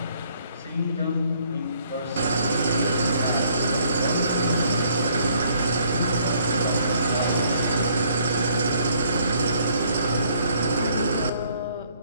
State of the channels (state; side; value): inverted; both; correlation -0.65